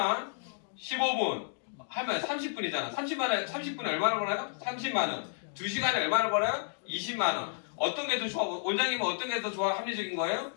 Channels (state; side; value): silent; right; digital silence